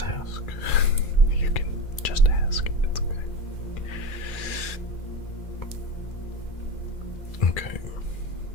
ask. You can just ask. It's okay. Okay.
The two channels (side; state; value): right; late; 2.4 ms